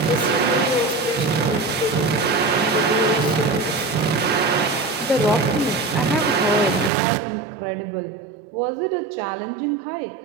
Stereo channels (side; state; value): left; drops out; at 6.9 s